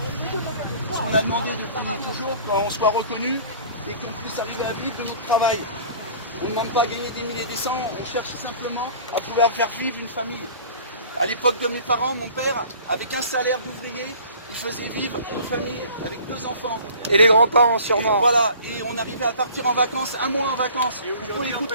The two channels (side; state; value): both; inverted; correlation -0.47